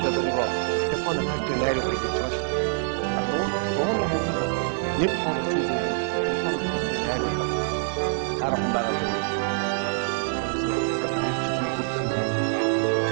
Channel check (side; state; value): left; silent; digital silence